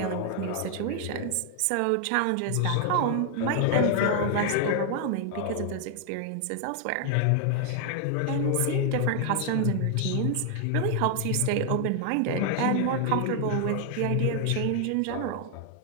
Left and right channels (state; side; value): different; both; correlation 0.00